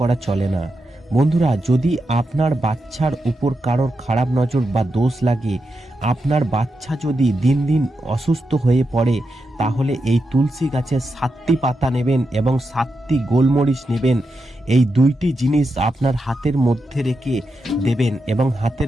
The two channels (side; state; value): both; normal; correlation 0.87